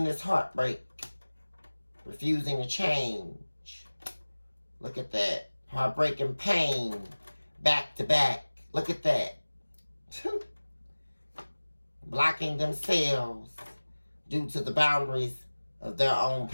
this heartbreak refusing to change. Look at that. Heartbreaking pain, back to back. Look at that. Blocking themselves due to the boundaries of their own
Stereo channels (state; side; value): inverted; both; correlation -1.00